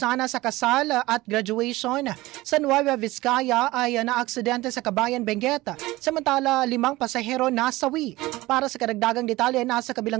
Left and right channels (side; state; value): left; quieter; 19.1 dB